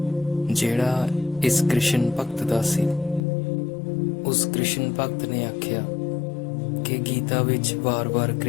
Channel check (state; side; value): drops out; right; at 3.2 s